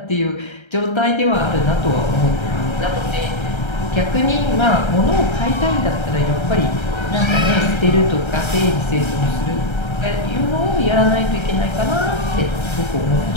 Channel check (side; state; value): right; late; 1.3 ms